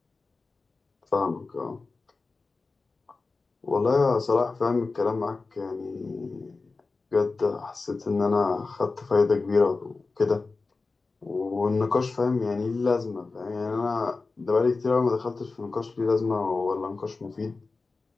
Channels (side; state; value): right; quieter; 3.9 dB